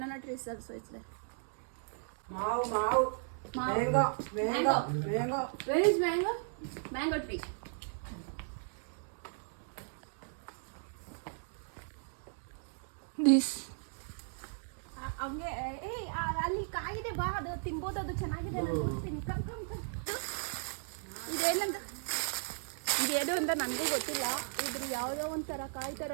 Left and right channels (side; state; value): left; silent; digital silence